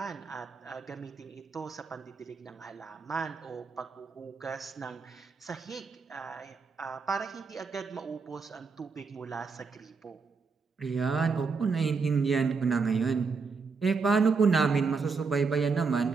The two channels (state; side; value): quieter; left; 4.9 dB